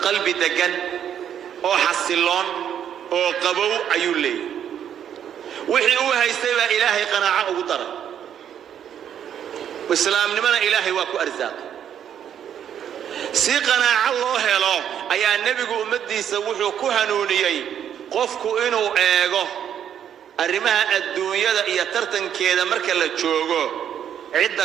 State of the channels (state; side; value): quieter; left; 9.3 dB